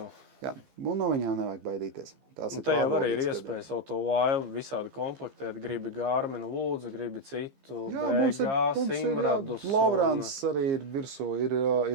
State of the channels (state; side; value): late; left; 15 ms